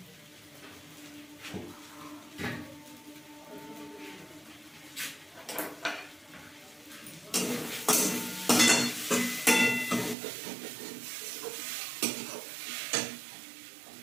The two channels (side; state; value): left; drops out; at 10.2 s